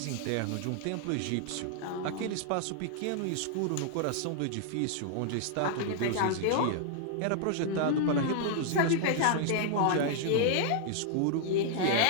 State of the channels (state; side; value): different; both; correlation -0.01